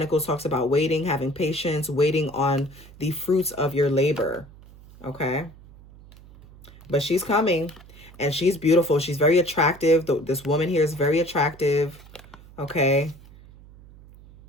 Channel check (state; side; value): noise; right; hum, 21 dB below the sound